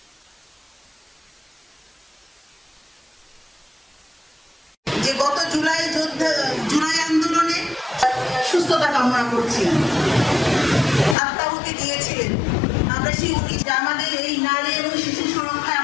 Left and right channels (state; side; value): drops out; right; at 11.2 s